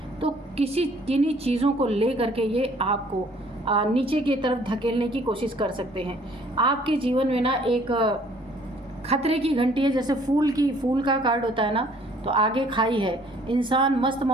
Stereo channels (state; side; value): normal; both; correlation 0.58